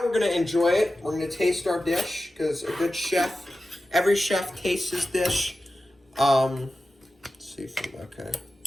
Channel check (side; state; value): both; normal; correlation 0.93